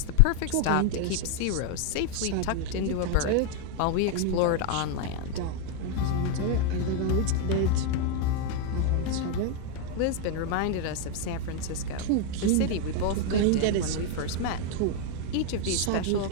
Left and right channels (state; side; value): different; both; correlation 0.01